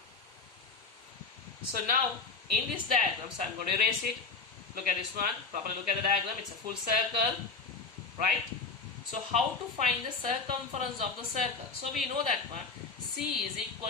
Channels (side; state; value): right; quieter; 4.4 dB